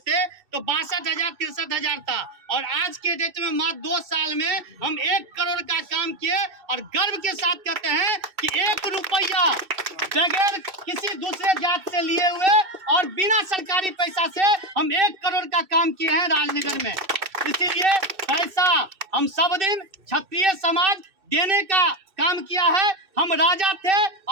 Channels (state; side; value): late; left; 2.6 ms